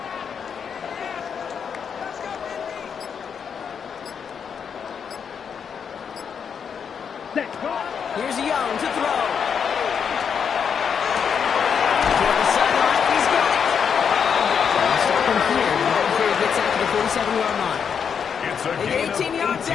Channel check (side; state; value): right; quieter; 7.0 dB